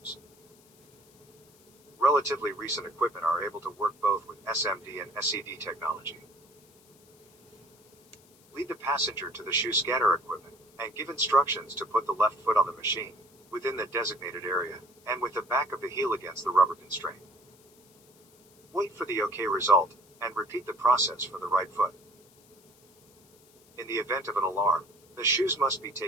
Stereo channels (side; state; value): left; noise; hiss, 29 dB below the sound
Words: Relatively recent equipment are able to work both with SMD and SED technology. Lead the passenger to the shoe scanner equipment, and give instructions to put the left foot on the machine, within the designated area, and with the back of the heel against the rubber constraint. Wait for the OK result, and repeat the process for the right foot. In the event of an alarm, the shoes must be